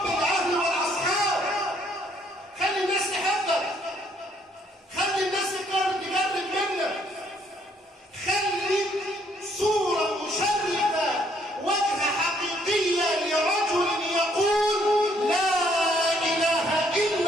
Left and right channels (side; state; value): both; normal; correlation 0.67